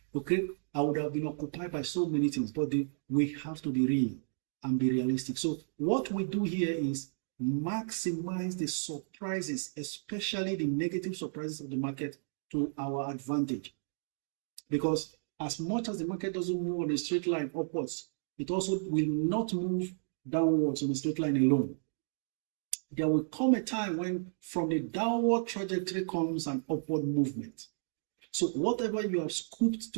Okay? I would have been occupied by so many things, but we have to be real and be realistic. So what we do here is maximize the surprises, especially the negative surprises of the market, to our advantage. Because as much as the market doesn't move on a straight line upwards, it also will not move downwards on a straight line alone. There will come a time when from the downward trajectory comes an upward movement. So whatever you have scooped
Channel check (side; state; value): left; silent; digital silence